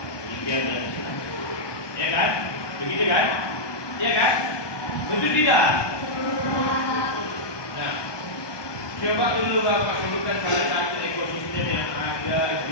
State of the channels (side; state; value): right; late; 1.2 ms